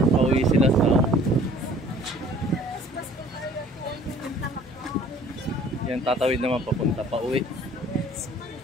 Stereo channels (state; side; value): normal; both; correlation 0.53